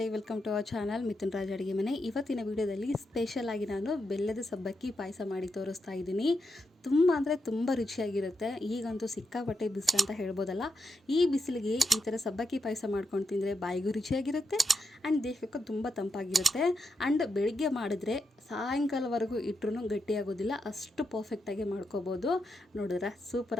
welcome to our channel Mithun Raj ಅಡುಗೆ ಮನೆ. ಇವತ್ತಿನ ವಿಡಿಯೋದಲ್ಲಿ ಸ್ಪೆಷಲ್ ಆಗಿ ನಾನು ಬೆಲ್ಲದ ಸಬ್ಬಕ್ಕಿ ಪಾಯಸ ಮಾಡಿ ತೋರಿಸ್ತಾ ಇದ್ದೀನಿ. ತುಂಬ ಅಂದರೆ ತುಂಬ ರುಚಿಯಾಗಿರುತ್ತೆ. ಈಗಂತೂ ಸಿಕ್ಕಾಪಟ್ಟೆ ಬಿಸಿಲು ಅಂತ ಹೇಳ್ಬೋದಲ್ಲ. ಈ ಬಿಸಿಲಿಗೆ ಈ ಥರ ಸಬ್ಬಕ್ಕಿ ಪಾಯಸ ಮಾಡ್ಕೊಂಡು ತಿಂದರೆ ಬಾಯಿಗೂ ರುಚಿಯಾಗಿರುತ್ತೆ ಆ್ಯಂಡ್ ದೇಹಕ್ಕೂ ತುಂಬ ತಂಪಾಗಿರುತ್ತೆ. ಆ್ಯಂಡ್ ಬೆಳಿಗ್ಗೆ ಮಾಡಿದ್ರೆ ಸಾಯಂಕಾಲವರೆಗೂ ಇಟ್ಟರೂ ಗಟ್ಟಿಯಾಗೋದಿಲ್ಲ, ಅಷ್ಟು ಪರ್ಫೆಕ್ಟಾಗಿ ಮಾಡ್ಕೋಬೋದು. ನೋಡಿದ್ರೆ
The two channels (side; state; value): both; normal; correlation 0.84